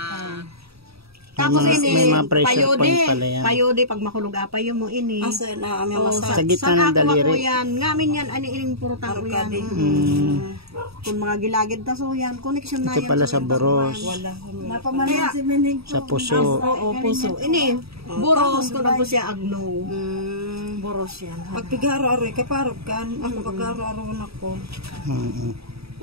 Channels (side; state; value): left; late; 0.77 ms